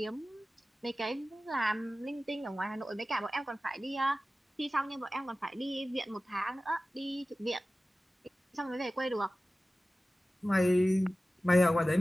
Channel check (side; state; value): both; normal; correlation 0.96